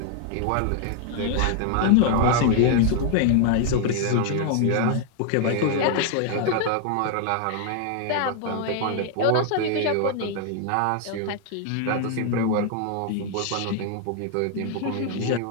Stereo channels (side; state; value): both; different; correlation 0.00